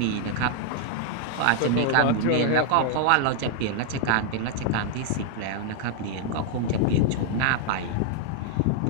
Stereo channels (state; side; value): different; both; correlation 0.00